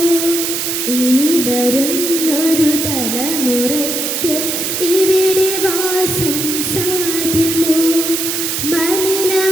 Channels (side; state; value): right; noise; hiss, 1 dB below the sound